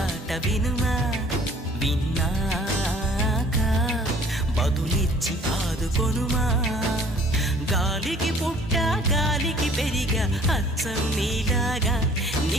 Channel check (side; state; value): both; normal; correlation 0.54